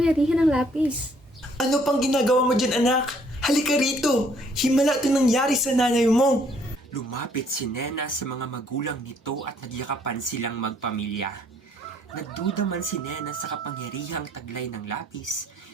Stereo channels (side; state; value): both; normal; correlation 0.64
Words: ng lapis. Ano pang ginagawa mo dyan, anak? Halika rito! Himala ito nangyari sa nanay mo! Lumapit si Nena sa mga magulang nito at nagyakapan silang magpamilya. Nagduda man si Nena sa kapangyarihang taglay ng lapis,